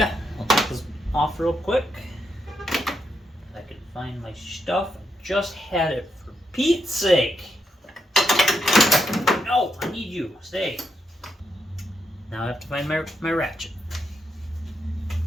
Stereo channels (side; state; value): both; normal; correlation 0.81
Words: I'll take this off real quick. If I can find my stuff. I just had it, for Pete's sake. No, I need you. Stay. Now I have to find my ratchet